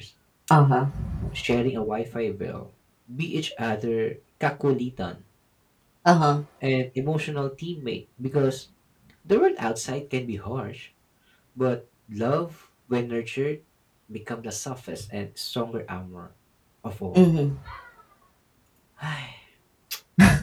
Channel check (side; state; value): both; identical; correlation 1.00